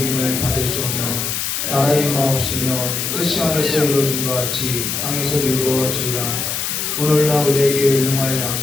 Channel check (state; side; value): noise; left; hiss, 2 dB below the sound